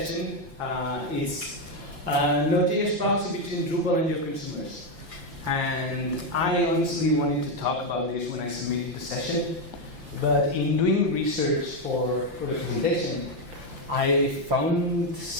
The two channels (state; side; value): late; left; 5.8 ms